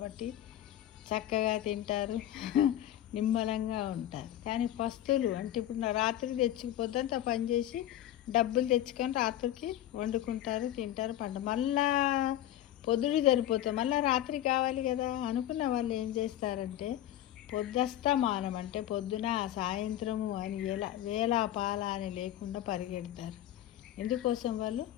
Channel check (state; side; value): quieter; right; 12.7 dB